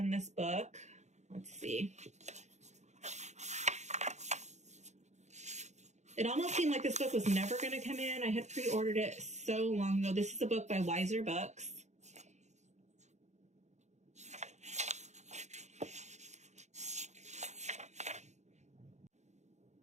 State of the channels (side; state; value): left; late; 0.33 ms